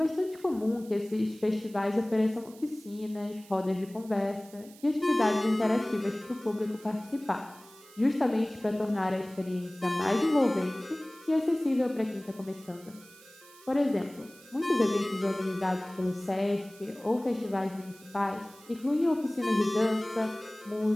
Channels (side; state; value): right; noise; hiss, 23 dB below the sound